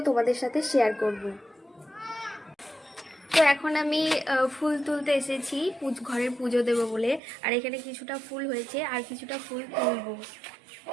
তোমাদের সাথে শেয়ার করব। তো এখন আমি ফুল তুলতে এসেছি, ঘরের পুজো দেবো বলে। আর এখানে কিছুটা ফুল হয়েছে আর কিছুটা ফুল তুলবো।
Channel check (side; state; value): left; drops out; at 7.2 s